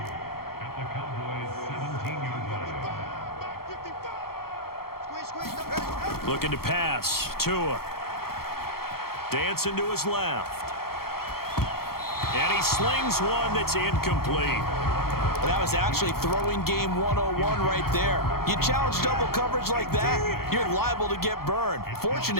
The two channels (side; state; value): right; late; 0.94 ms